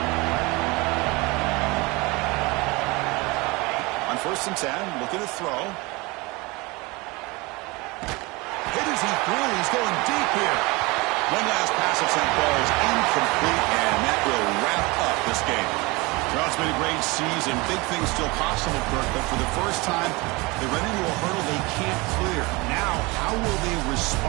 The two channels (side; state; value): left; quieter; 24.7 dB